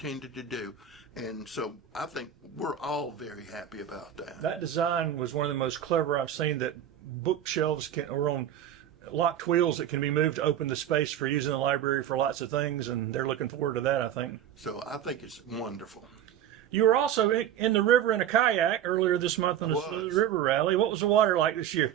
to do. And so I think we're all very happy about that. That design was one of the most clever I've seen, that bookshelves are on locked wheels that can be moved to open the space for using the library for lots of things, and they're looking forward to that, I think. So I think it's wonderful. You were also in the river in a kayak earlier this month on the Saluda River Rally. What was the water like this year?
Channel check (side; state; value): left; quieter; 10.1 dB